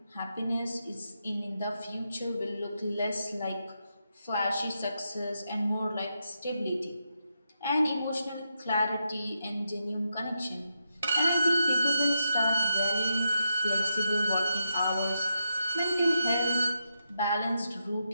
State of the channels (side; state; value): both; inverted; correlation -0.84